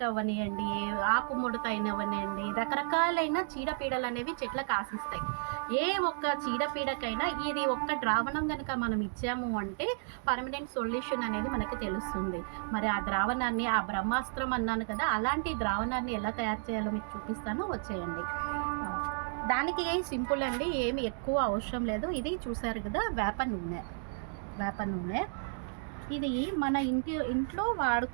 అవనియండి, ఆకుముడత అయినవనియండి, రకరకాలైన చీడపీడలు అనేవి చెట్లకు ఆశిస్తాయి. ఏ ఒక్క చీడపీడకైనా ఇది ఒక్క ద్రావణం కనుక మనం ఇచ్చాము అంటే పర్మనెంట్ సొల్యూషన్ అనేది మనకి తెలుస్తుంది. మరి ఆ ద్రావణాన్ని, ఆ బ్రహ్మాస్త్రం అన్నాను కదా, అలాంటి ద్రావణాన్ని ఎలా తయారు చేయాలో మీకు చూపిస్తాను, వచ్చేయండి. దానికి సింపుల్ అండి, ఏమి ఎక్కువ అవసరం లేదు. ఇది చూసారు కదా, వేప నూనె. ఇది మన ఇంట్లో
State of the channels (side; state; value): left; silent; digital silence